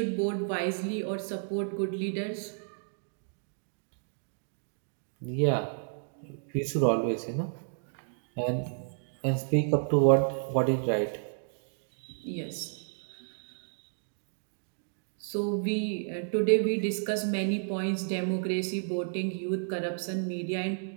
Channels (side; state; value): left; silent; digital silence